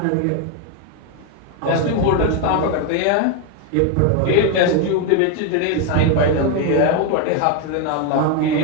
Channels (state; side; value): different; both; correlation 0.01